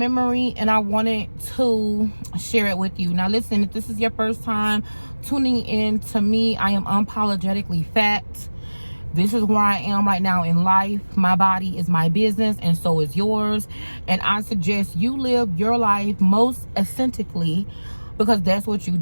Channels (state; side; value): inverted; both; correlation -1.00